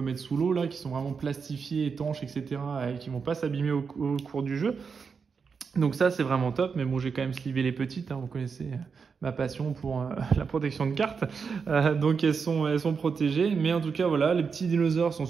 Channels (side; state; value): left; quieter; 5.6 dB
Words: mettre sous l'eau là, qui sont vraiment plastifiées, étanches, etc. et qui vont pas s'abîmer au cours du jeu. Donc ça, c'est vraiment top, mais bon, j'ai quand même slivé les petites, hein, vous connaissez ma passion pour la protection de cartes. Donc elles sont protégées, mais en tout cas, voilà, les petits dinosaures sont